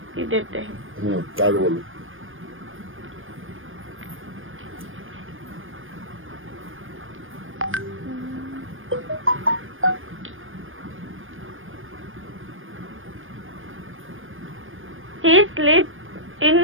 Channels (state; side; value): late; left; 0.59 ms